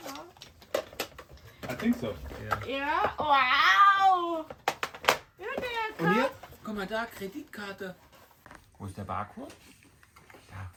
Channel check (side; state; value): both; identical; correlation 1.00